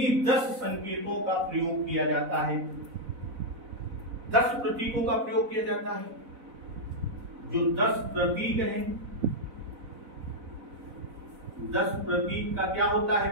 10 संकेतों का प्रयोग किया जाता है। 10 प्रतीकों का प्रयोग किया जाता है। जो 10 प्रतीक हैं, 10 प्रतीक का क्या होता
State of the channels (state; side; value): late; left; 4.0 ms